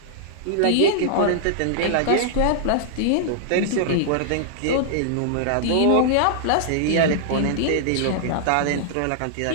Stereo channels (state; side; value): different; both; correlation -0.01